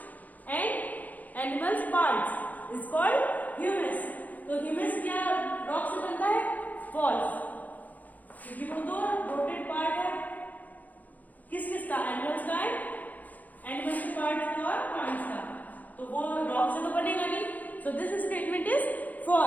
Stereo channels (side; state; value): right; late; 0.080 ms